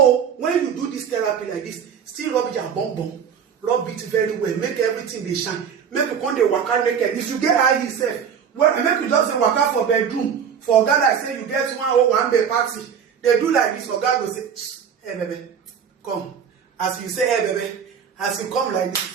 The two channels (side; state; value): left; quieter; 7.5 dB